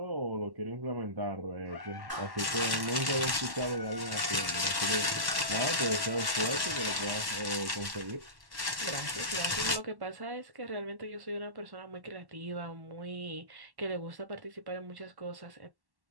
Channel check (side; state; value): left; late; 1.1 ms